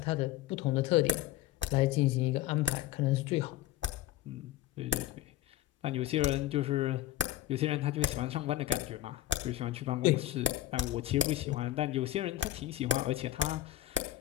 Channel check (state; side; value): quieter; right; 13.7 dB